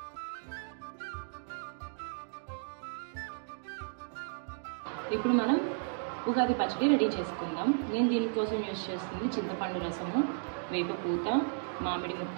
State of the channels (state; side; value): silent; left; digital silence